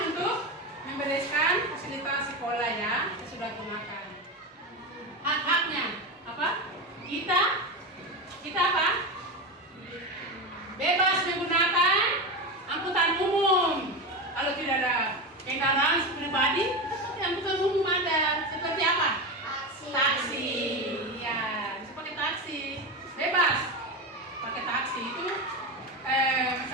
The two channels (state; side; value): normal; both; correlation 0.19